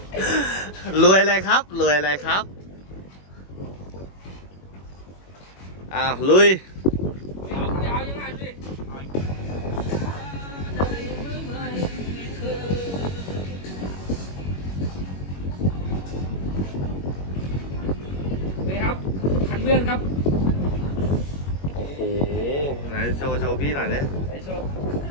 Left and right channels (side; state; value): right; late; 21 ms